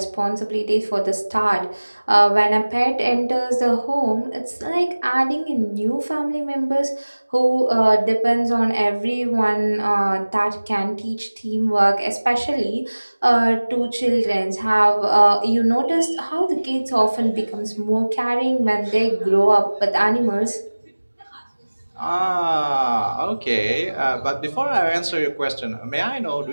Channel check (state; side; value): inverted; both; correlation -1.00